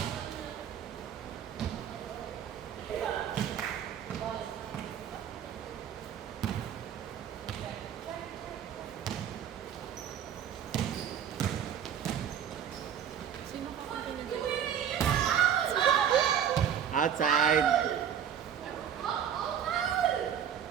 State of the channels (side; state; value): left; quieter; 8.8 dB